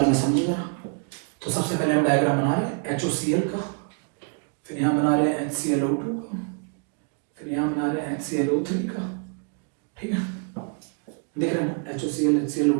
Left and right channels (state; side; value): quieter; left; 39.7 dB